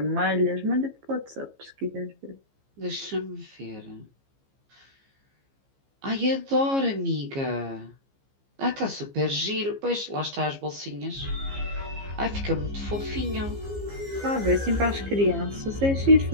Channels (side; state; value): left; late; 15 ms